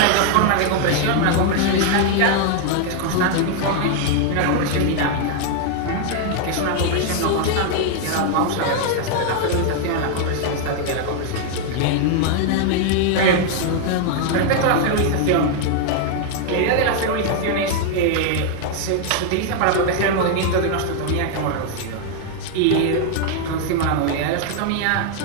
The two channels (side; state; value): both; different; correlation 0.00